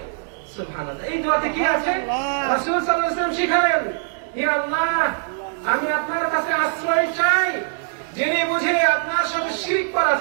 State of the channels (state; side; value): silent; left; digital silence